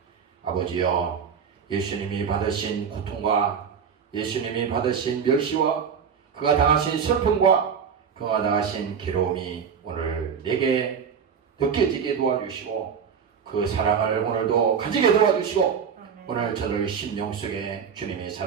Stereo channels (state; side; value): quieter; left; 6.9 dB